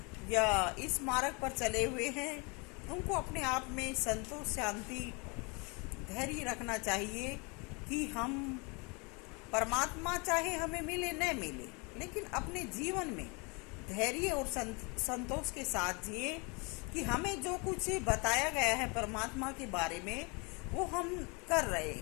या इस मार्ग पर चले हुए हैं, उनको अपने आप में संतोष, शांति, धैर्य रखना चाहिए कि हम परमात्मा चाहे हमें मिले न मिले, लेकिन अपने जीवन में धैर्य और संतोष के साथ जिए कि हमें जो कुछ बताया गया है परमात्मा के बारे में वो हम कर रहे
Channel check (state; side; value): quieter; right; 30.5 dB